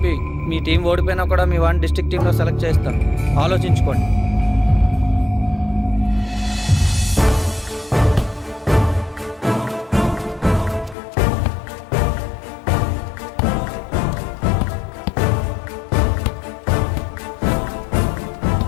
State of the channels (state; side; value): drops out; right; at 11.0 s